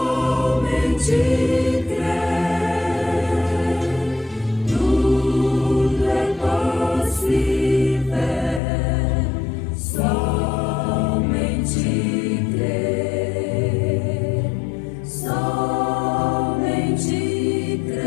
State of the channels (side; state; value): right; drops out; at 8.6 s